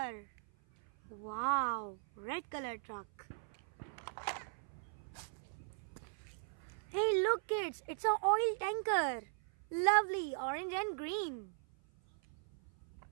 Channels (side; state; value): left; silent; 52 dB below the other